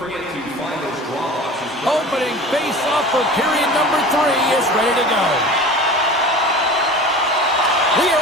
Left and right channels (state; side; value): normal; both; correlation 0.37